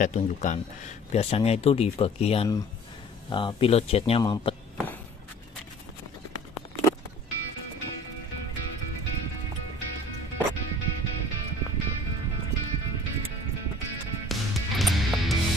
tunjukkan. Biasanya itu di bagian pilot jetnya mampet.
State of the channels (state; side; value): normal; both; correlation 0.48